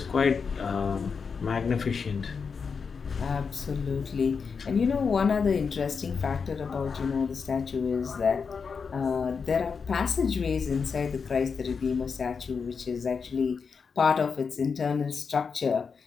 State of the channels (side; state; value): right; quieter; 5.6 dB